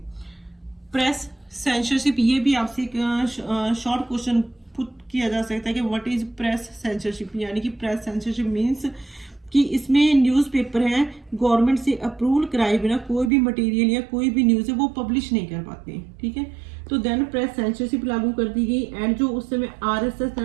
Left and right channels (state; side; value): drops out; left; at 13.3 s